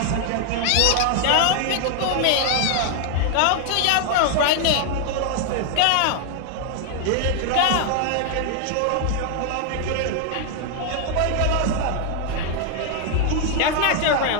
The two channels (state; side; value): different; both; correlation 0.00